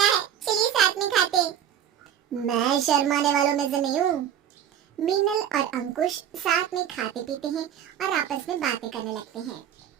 है, चलिए साथ में खाते हैं। मैं शर्माने वालों में से नहीं हूँ। मीनल और अंकुश साथ में खाते पीते हैं और आपस में बातें करने लगते हैं।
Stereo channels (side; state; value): left; quieter; 9.7 dB